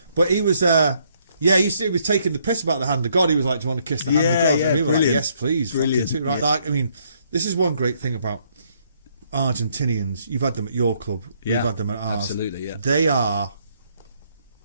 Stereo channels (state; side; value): inverted; both; correlation -0.70